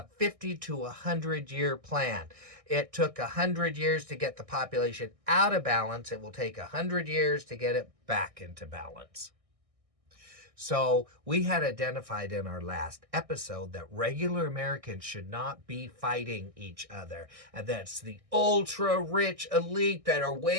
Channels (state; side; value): late; left; 1.6 ms